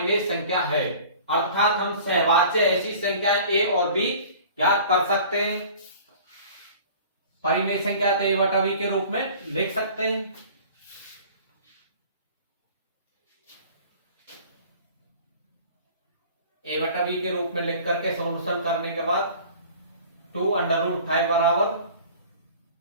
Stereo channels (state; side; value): inverted; both; correlation -0.45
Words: संख्या है। अर्थात हम सहभाज्य ऐसी संख्या a और b याद कर सकते हैं। परिमेय संख्या तो a/v के रूप में लिख सकते हैं। a/v के रूप में लिख करके सॉल्यूशन करने के बाद 2 √5 बराबर